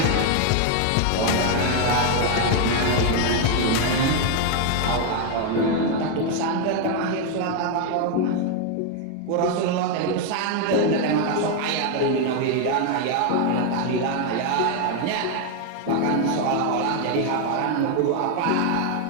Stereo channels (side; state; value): both; different; correlation 0.01